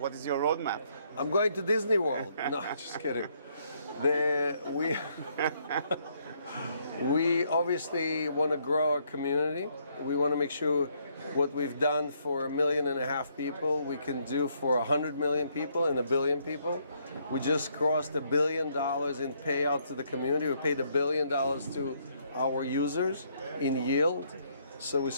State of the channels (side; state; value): both; inverted; correlation -0.71